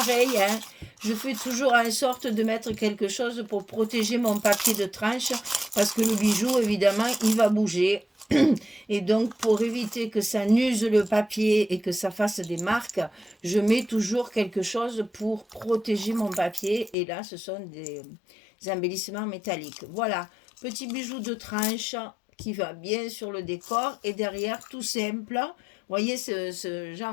hein, je fais toujours en sorte de mettre quelque chose pour protéger mon papier de tranche parce que le bijou, évidemment, il va bouger. Et donc, pour éviter que ça n'use le papier et que ça fasse des marques, je mets toujours quelque chose pour protéger mon papier. Et là, ce sont des embellissements métalliques. Voilà, petit bijou de tranche qui va bien sur le décor. Et derrière, tout simple. Vous voyez ce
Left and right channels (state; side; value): drops out; right; at 16.9 s